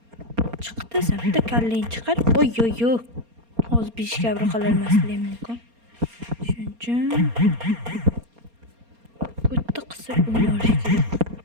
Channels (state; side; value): late; left; 4.3 ms